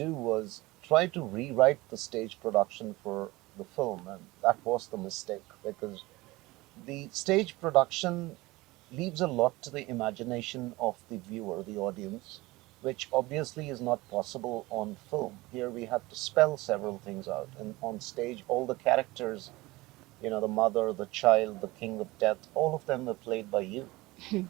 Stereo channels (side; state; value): left; quieter; 20.7 dB